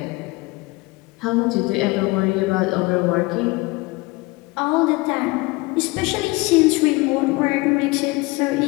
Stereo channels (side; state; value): right; quieter; 23.5 dB